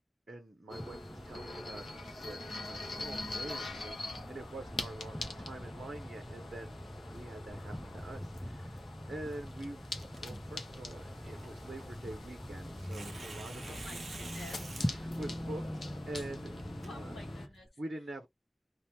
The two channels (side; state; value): both; normal; correlation 0.92